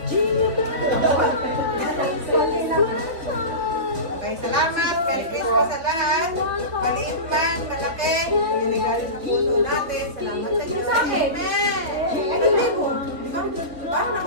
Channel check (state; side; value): late; left; 3.2 ms